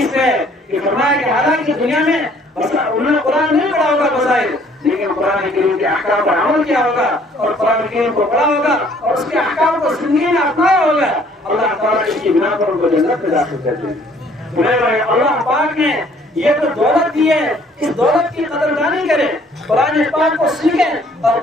ہے کہ فرمایا کہ حالانکہ دنیا میں انہوں نے قرآن نہیں پڑھا ہوگا بظاہر، لیکن قرآن کریم کے احکام پر عمل کیا ہوگا اور قرآن کریم کو پڑھا ہوگا اور اس کے احکام کو زندگی میں اپنایا ہوگا، اللہ تعالیٰ اس کی بنا پر ان کو جنت میں داخل کر دیں گے۔ اللہ پاک نے یہ تو دولت دی ہے، اس دولت کی قدردانی کریں، قرآن پاک کو سیکھیں اور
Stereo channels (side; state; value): both; normal; correlation 0.60